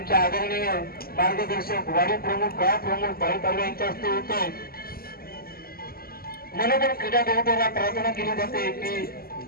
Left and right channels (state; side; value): late; right; 0.44 ms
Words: आदरणीय मार्गदर्शक वाडी प्रमुख गाव प्रमुख भाई तालुका यांच्या हस्ते होते. म्हणून क्रीडा गुरुकुलाला प्रार्थना केली जाते की